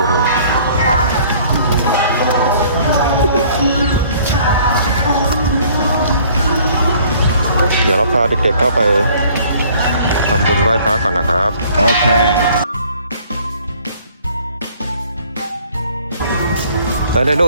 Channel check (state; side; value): inverted; both; correlation -0.56